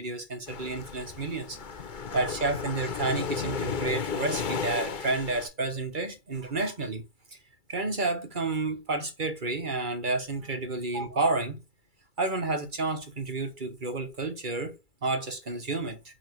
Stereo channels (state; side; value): late; left; 2.3 ms